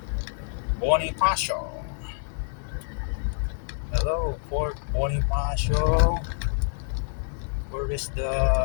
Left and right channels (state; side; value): silent; right; 60 dB below the other